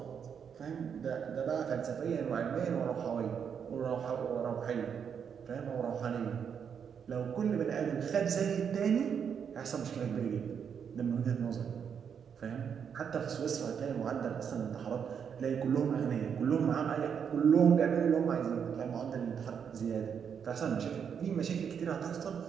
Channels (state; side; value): quieter; left; 7.4 dB